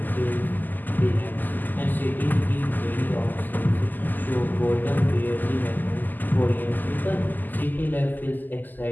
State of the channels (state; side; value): late; right; 0.086 ms